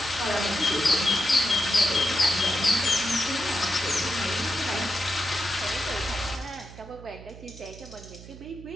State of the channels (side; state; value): right; noise; hum, 16 dB below the sound